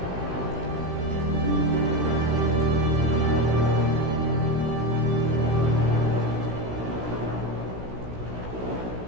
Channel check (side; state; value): left; late; 16 ms